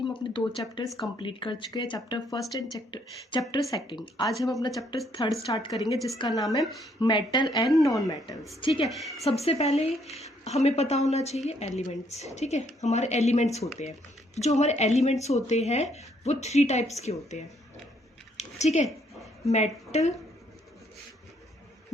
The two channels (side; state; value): both; normal; correlation 0.69